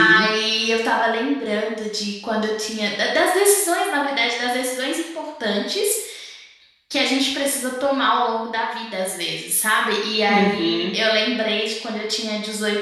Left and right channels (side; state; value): both; identical; correlation 1.00